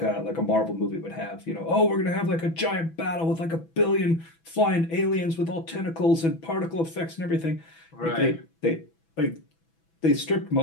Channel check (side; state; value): right; late; 6.1 ms